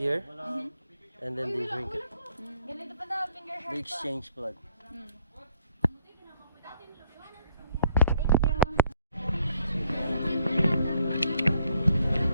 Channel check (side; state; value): both; inverted; correlation -0.68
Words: and then they drink it. They exchange blood.